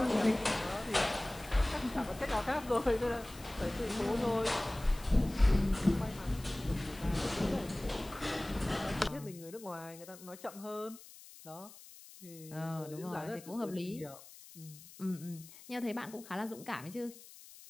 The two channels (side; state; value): left; noise; hiss, 18 dB below the sound